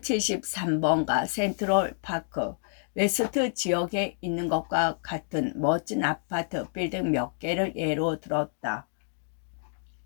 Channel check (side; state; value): right; silent; digital silence